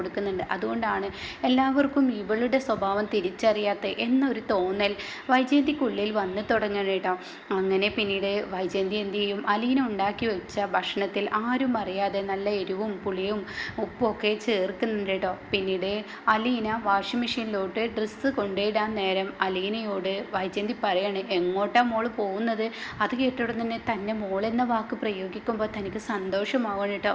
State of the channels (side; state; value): both; identical; correlation 1.00